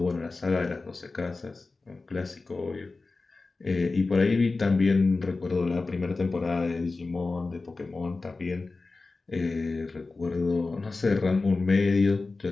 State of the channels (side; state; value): right; quieter; 3.7 dB